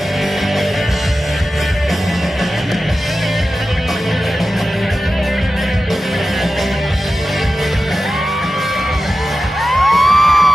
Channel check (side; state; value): both; normal; correlation 0.93